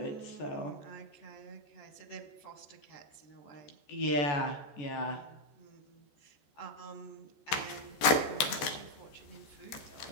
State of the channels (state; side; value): late; right; 14 ms